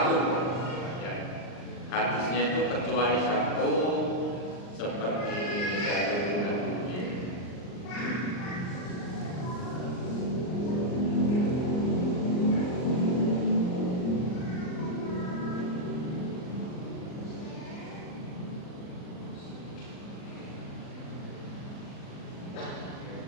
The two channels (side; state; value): right; late; 39 ms